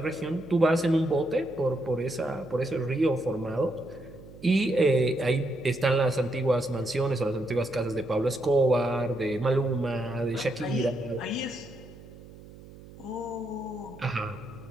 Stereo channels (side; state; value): right; noise; hum, 19 dB below the sound